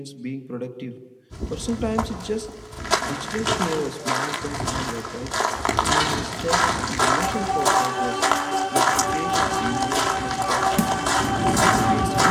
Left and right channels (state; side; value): identical; both; correlation 1.00